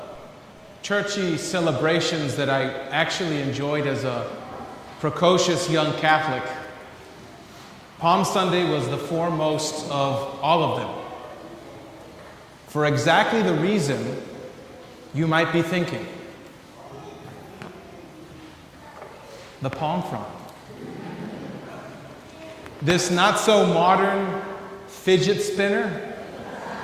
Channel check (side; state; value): both; identical; correlation 1.00